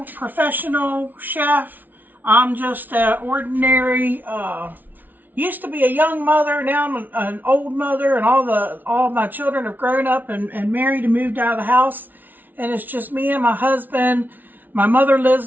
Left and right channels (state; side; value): late; left; 0.084 ms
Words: professional chef. I'm just an ordinary, used to be a young mother, now I'm an old mother, and all my children have grown up and married and moved out of the house. And it's just me and my husband. My mother lives